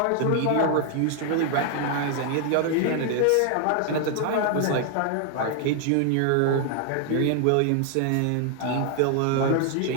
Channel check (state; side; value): different; both; correlation 0.00